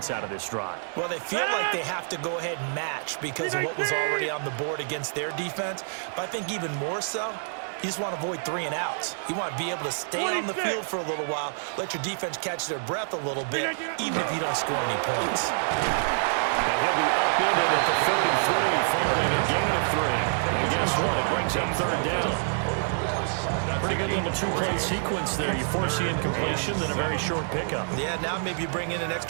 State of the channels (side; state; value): left; silent; digital silence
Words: out of this drive? Well, they feel like they have to go ahead and match because of what was already on the board against their defense. But I think even more so, you just want to avoid 3 and outs. You want to be able to stay on the field for a little while, let your defense catch their breath a little bit, even if you don't score any points. And he'll be upended at the 33 following a gain of 3. And guess what? It brings up 3rd down. Pretty good little 2-play sequence there. You force the incompletion, then a very short pickup. Yeah, now maybe you bring in an